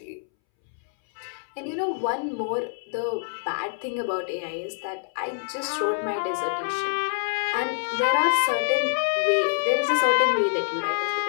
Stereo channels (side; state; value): right; silent; 61 dB below the other